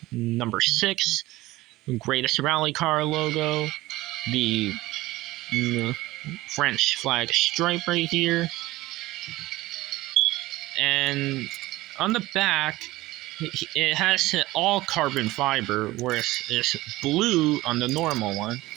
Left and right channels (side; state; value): left; quieter; 18.4 dB